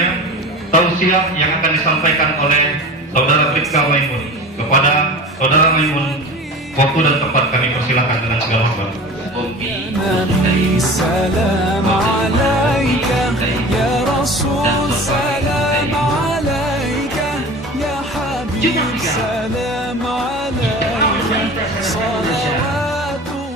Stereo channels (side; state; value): both; normal; correlation 0.36